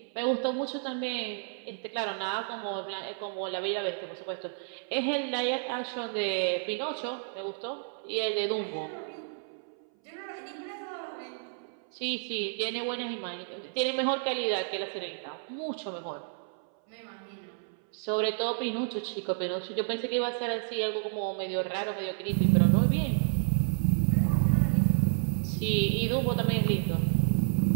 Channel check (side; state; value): left; silent; 57 dB below the other